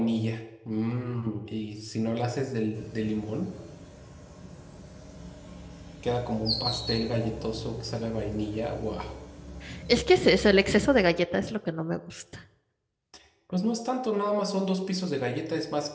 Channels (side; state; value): both; identical; correlation 1.00